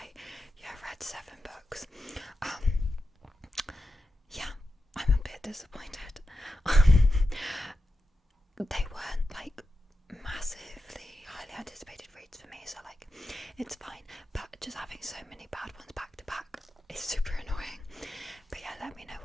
read 7 books. I'm a bit disappointed. They weren't like massively highly anticipated reads for me, so like it's fine, but just having so many bad ones back to back is super annoying. But yeah, let me know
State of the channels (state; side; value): normal; both; correlation 0.90